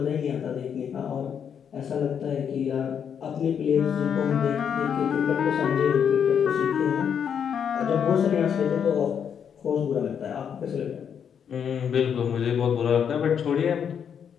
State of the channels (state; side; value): quieter; right; 7.8 dB